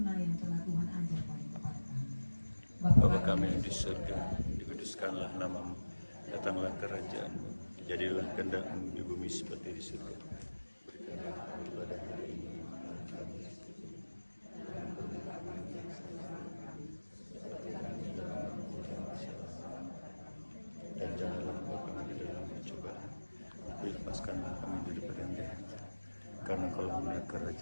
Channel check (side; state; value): both; inverted; correlation -1.00